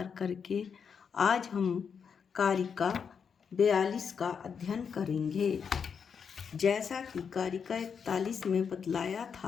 करके आज हम कारिका 42 का अध्ययन करेंगे। जैसा कि कारिका 41 में बतलाया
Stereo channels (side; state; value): right; quieter; 6.6 dB